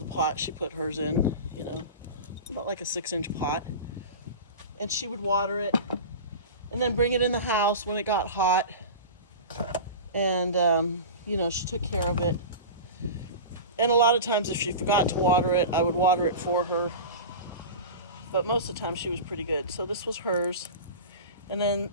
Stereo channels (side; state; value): both; inverted; correlation -0.30